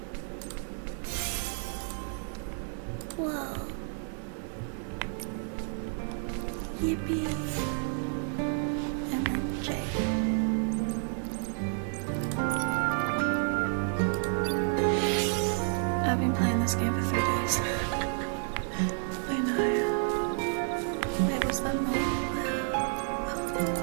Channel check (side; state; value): left; silent; 58 dB below the other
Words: Whoa. Yippee. MMJ. I've been playing this game for 3 days. I know. Wait, was that more?